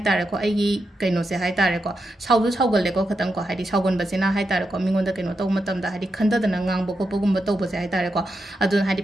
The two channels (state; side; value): normal; both; correlation 0.86